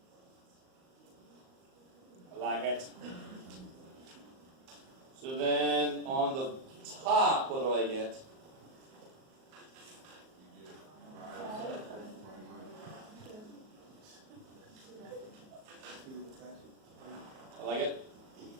I like it. So then on the top, what do I get? I like it.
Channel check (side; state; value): left; late; 38 ms